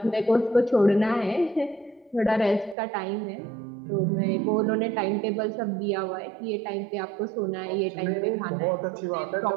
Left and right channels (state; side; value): drops out; left; at 2.8 s